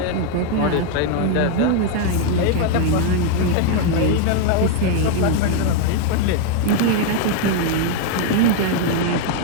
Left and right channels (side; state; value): both; different; correlation 0.01